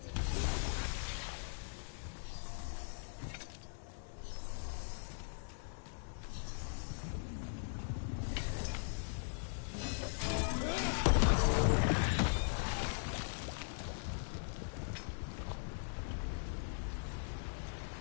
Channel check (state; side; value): silent; right; digital silence